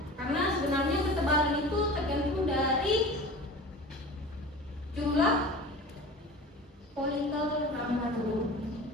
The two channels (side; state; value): both; normal; correlation 0.36